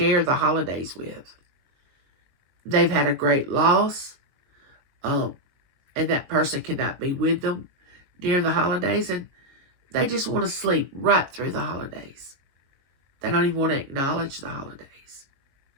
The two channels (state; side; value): late; left; 22 ms